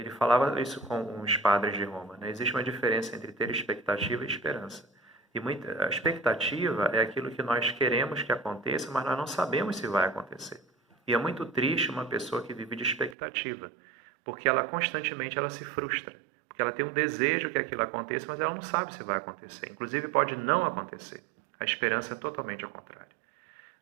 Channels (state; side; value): drops out; left; at 13.2 s